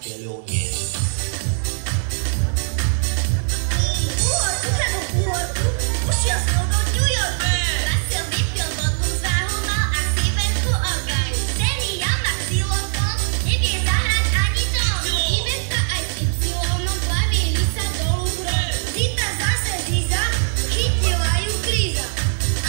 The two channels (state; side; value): silent; left; 65 dB below the other